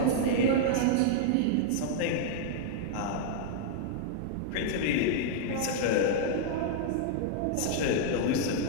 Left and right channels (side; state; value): both; different; correlation -0.01